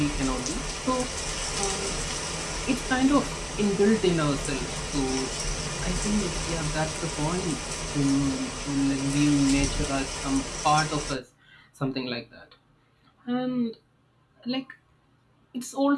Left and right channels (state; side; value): identical; both; correlation 1.00